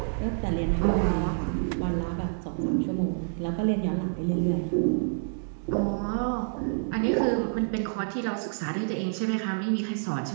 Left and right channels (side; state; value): left; silent; digital silence